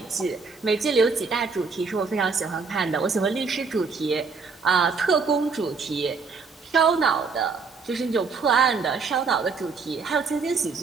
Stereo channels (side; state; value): left; quieter; 4.8 dB